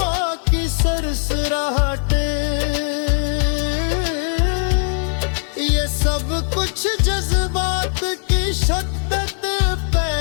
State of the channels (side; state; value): right; silent; 61 dB below the other